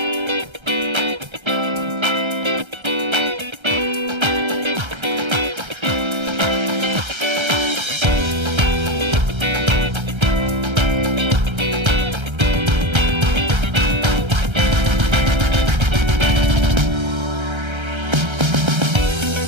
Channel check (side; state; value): left; late; 1.3 ms